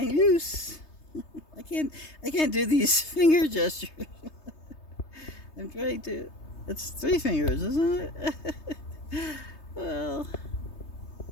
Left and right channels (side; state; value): right; late; 3.3 ms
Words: loose. I can't do these finger gestures. I'm trying to. It's 3 fingers, isn't it? Well,